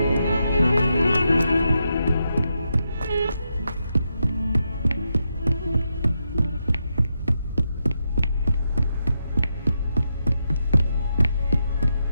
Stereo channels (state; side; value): inverted; both; correlation -0.84